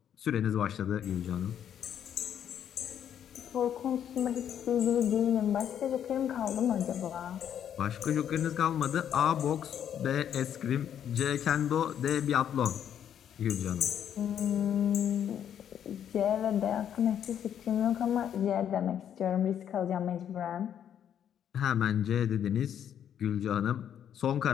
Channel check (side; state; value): right; quieter; 9.4 dB